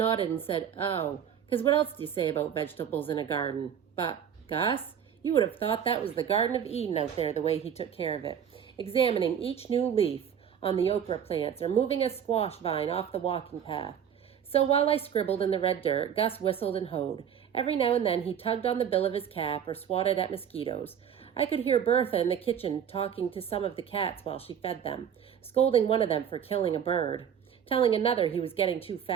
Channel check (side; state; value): left; quieter; 8.5 dB